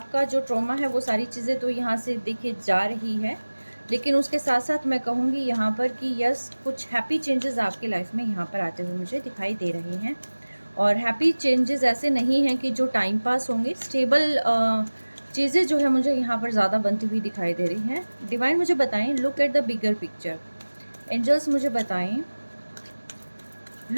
जो ट्रॉमा है वो सारी चीज़ें तो यहाँ से देखिए जा रही है, लेकिन उसके साथ साथ मैं कहूँगी यहाँ पर कि यस, कुछ हैप्पी चेंजेस आपकी लाइफ में यहाँ पर आते हुए मुझे दिखाई दे रहे हैं। और हैप्पी चेंजेस ऐसे नहीं हैं कि जो टाइम पास होंगे, स्टेबल चीज़ें जो है मुझे यहाँ पर ज़्यादा बनती हुई दिखाई दे रही हैं। डिवाइन मुझे बताएं, look at the bigger picture. Angels मुझे बताएं,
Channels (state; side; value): inverted; both; correlation -1.00